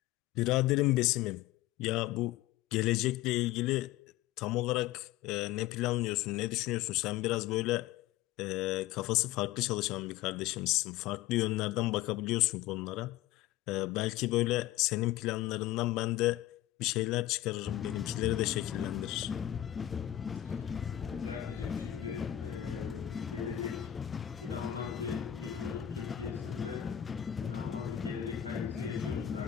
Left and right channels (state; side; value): quieter; right; 13.3 dB